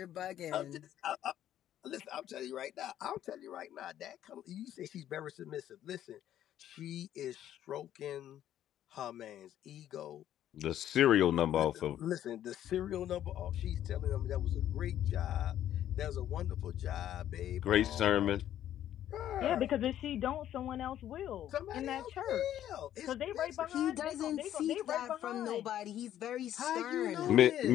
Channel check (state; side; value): quieter; right; 11.5 dB